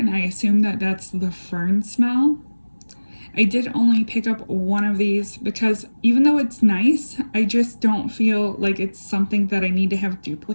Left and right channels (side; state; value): both; inverted; correlation -1.00